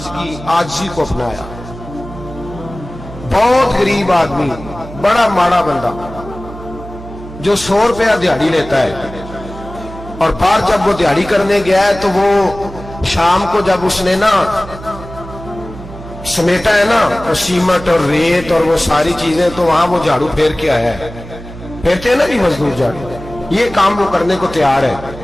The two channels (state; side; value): noise; right; hum, 14 dB below the sound